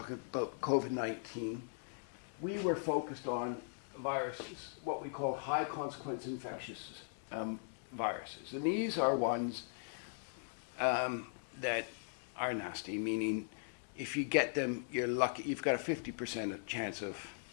about COVID-19, we were focused on viruses, what we call high consequence infectious viruses. And these are ones that are nasty, meaning if you get them, you're lucky. You've got a 50% chance of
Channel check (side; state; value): right; silent; digital silence